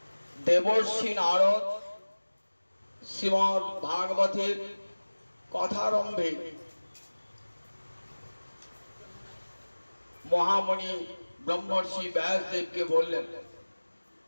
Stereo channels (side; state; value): both; inverted; correlation -1.00